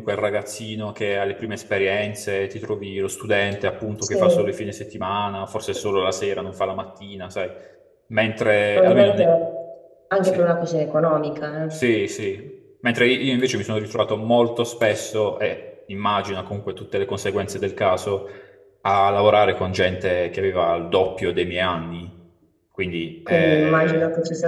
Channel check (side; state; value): both; identical; correlation 1.00